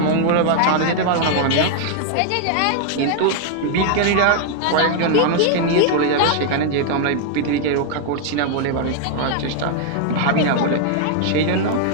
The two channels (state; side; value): different; both; correlation 0.00